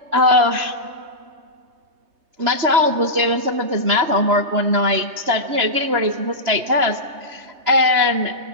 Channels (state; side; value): late; left; 3.3 ms